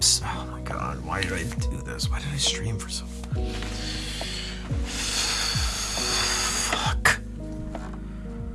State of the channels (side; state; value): both; identical; correlation 1.00